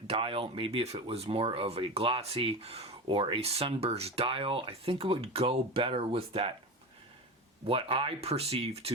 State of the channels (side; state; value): both; normal; correlation 0.25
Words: dial, maybe if it was more of a glossy or a sunburst dial, I think it would go better with that, what I perceive